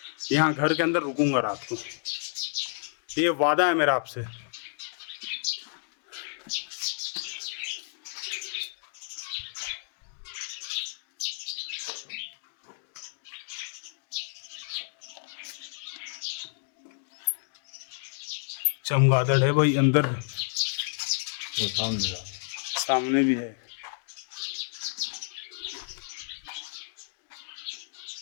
यहाँ घर के अंदर रुकूंगा रात को, ये वादा है मेरा आपसे। चमगादड़ है भाई अंदर, वो सामने भी है।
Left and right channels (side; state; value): right; silent; digital silence